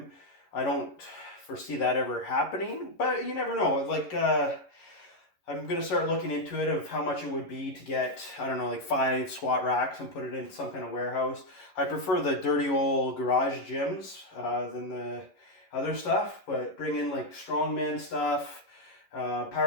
I don't foresee that ever happening, but you never know. Like I'm gonna start looking into it of how much it would be to get, I don't know, like 5 squat racks and put it in some kind of warehouse. I prefer the dirty old garage gyms than the other stuff, but bring in like strongman stuff,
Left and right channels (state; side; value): late; right; 11 ms